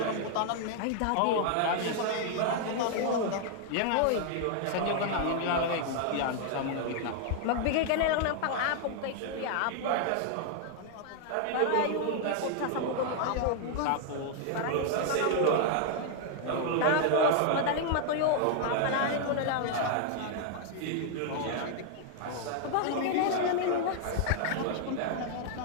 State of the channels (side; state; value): both; different; correlation 0.00